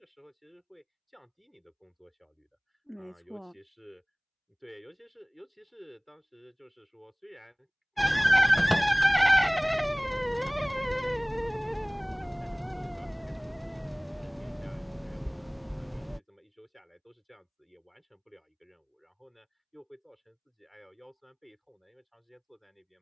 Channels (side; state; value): both; identical; correlation 1.00